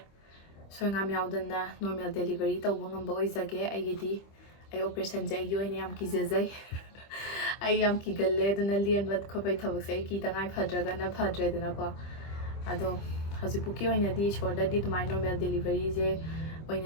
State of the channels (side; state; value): right; late; 25 ms